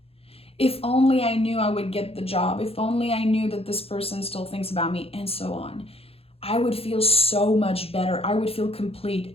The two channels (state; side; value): late; right; 0.28 ms